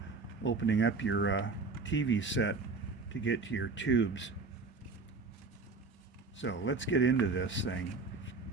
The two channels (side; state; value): left; quieter; 4.0 dB